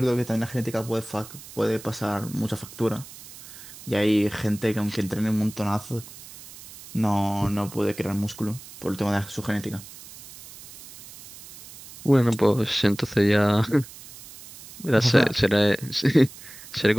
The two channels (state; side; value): noise; right; hiss, 17 dB below the sound